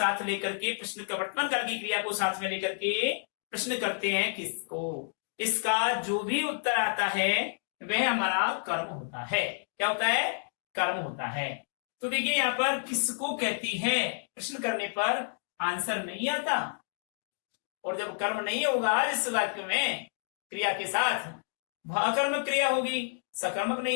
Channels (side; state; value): right; silent; digital silence